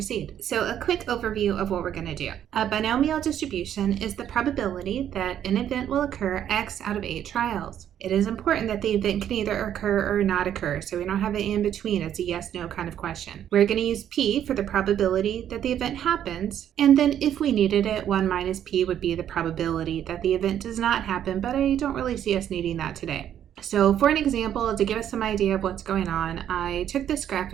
So a quick overview of what we're going to do. A binomial distribution is the probability that an event will occur X out of 8 trials. It is important that the event can either occur or not occur, so we don't have an in between. It's a yes/no kind of question. We're going to use P for the probability that the event happens, and then if we needed it, 1 minus P would be the probability that the event does not happen, but I don't really see us needing that today. So for an example, to give us some idea of what's going on, I took this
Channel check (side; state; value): left; quieter; 10.2 dB